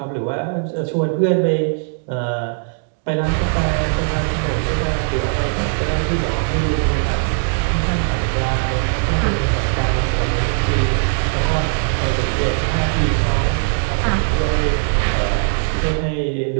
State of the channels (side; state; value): left; silent; 65 dB below the other